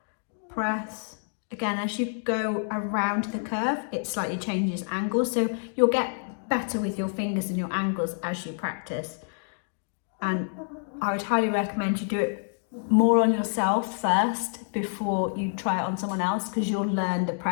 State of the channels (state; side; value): silent; right; 60 dB below the other